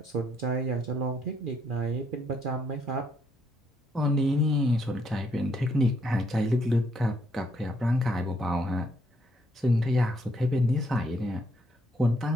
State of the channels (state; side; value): normal; both; correlation 0.72